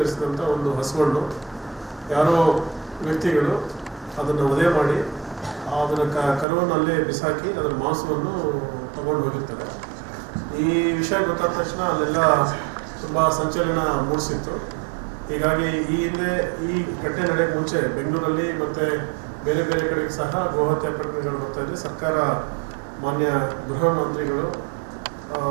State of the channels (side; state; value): left; drops out; at 6.5 s